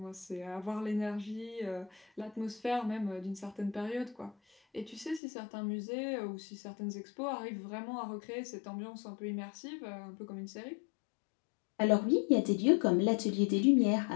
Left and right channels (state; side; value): drops out; right; at 5.2 s